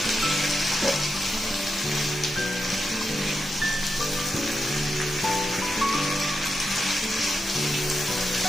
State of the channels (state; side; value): normal; both; correlation 0.87